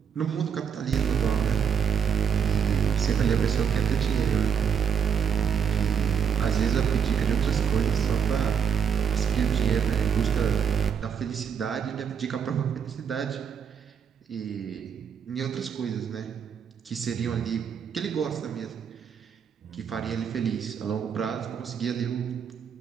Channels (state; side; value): quieter; left; 7.4 dB